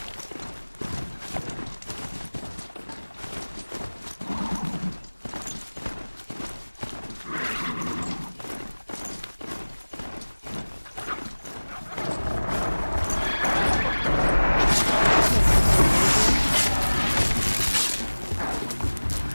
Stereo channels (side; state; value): both; inverted; correlation -1.00